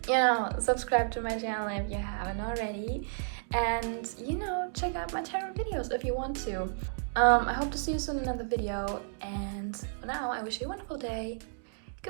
you know, subscribe to my channel if you haven't already. And, you know, check out my tarot videos if you want to. I hope to see you soon in another video. And for now, I wish you a wonderful day.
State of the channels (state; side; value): silent; left; digital silence